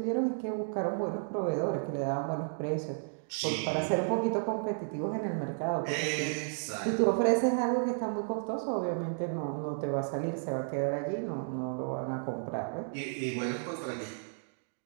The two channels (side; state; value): left; silent; digital silence